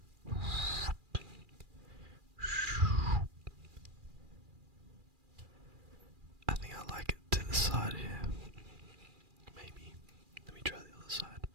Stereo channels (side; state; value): left; late; 2.4 ms